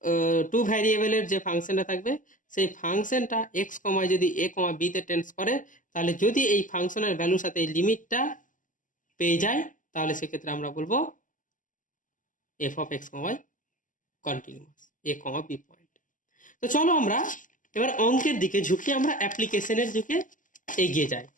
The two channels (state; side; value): late; right; 0.38 ms